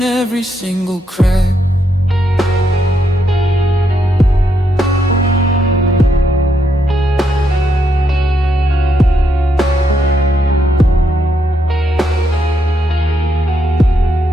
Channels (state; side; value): normal; both; correlation 0.78